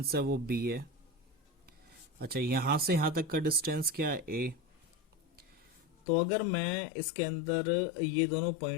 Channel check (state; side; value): drops out; right; at 5.9 s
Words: है वो b है। अच्छा, यहाँ से यहाँ तक का डिस्टेंस क्या है? a। तो अगर मैं इसके अंदर ये दोनों